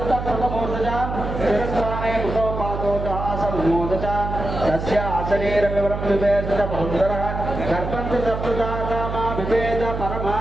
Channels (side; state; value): right; noise; hum, 5 dB below the sound